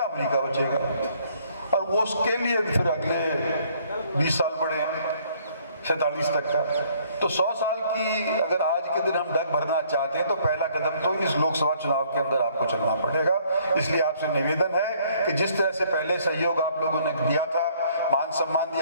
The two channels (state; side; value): inverted; both; correlation -0.62